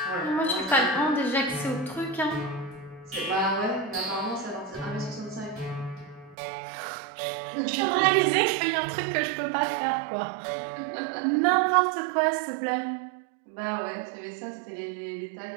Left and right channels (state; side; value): drops out; left; at 6.4 s